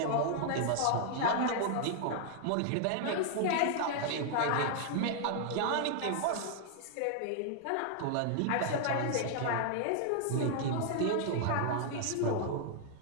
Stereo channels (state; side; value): different; both; correlation -0.01